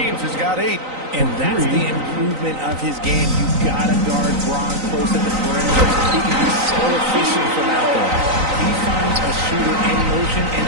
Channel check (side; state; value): left; late; 3.9 ms